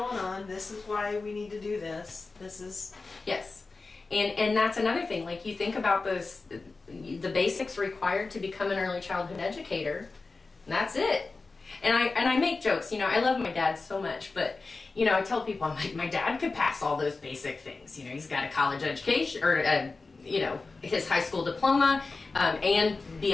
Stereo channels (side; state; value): right; quieter; 3.9 dB